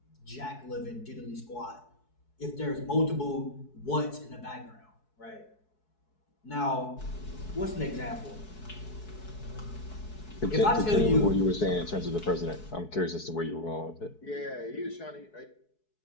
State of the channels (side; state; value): right; late; 4.7 ms